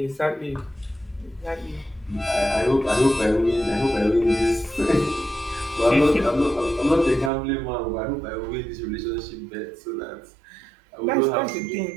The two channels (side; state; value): left; drops out; at 7.3 s